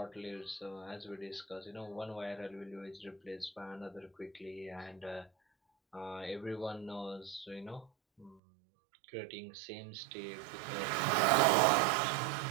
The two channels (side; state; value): left; drops out; at 8.4 s